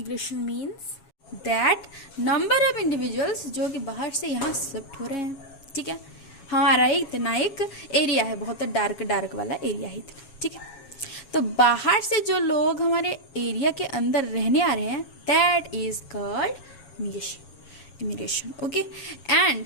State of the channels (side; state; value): right; late; 7.3 ms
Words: means that number of individuals जो कि बाहर से यहाँ शिफ्ट हो रहे हैं, ठीक है। हमारा इतना एक एरिया है, बहुत डार्क वाला एरिया है, ठीक है। तो बाहर से जो लोग हमारे एरिया के अंदर रहने आ रहे हैं, that is called immigration, okay.